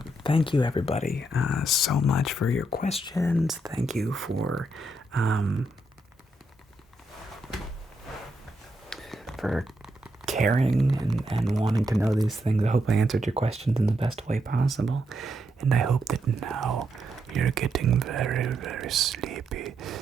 thank you everybody so much for your questions. Thank you for caring and wanting to know these things. I hope I answered your questions in the best way possible. And I hope that now you're getting very, very sleepy.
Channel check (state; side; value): normal; both; correlation 0.79